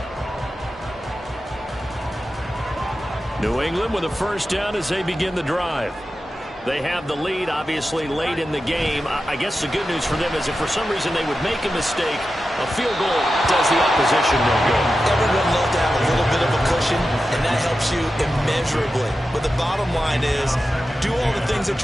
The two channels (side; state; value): both; normal; correlation 0.92